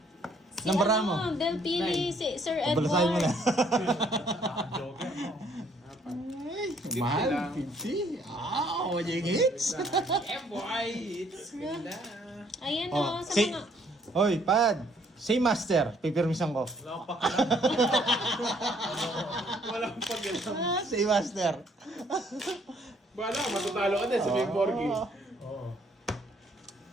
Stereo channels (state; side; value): normal; both; correlation 0.64